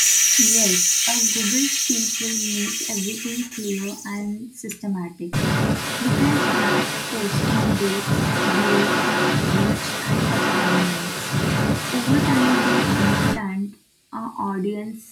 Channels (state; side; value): identical; both; correlation 1.00